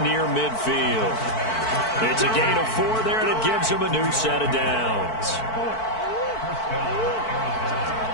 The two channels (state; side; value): late; right; 4.5 ms